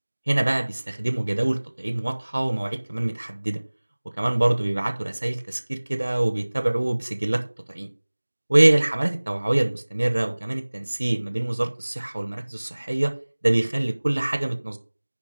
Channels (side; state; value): both; inverted; correlation -1.00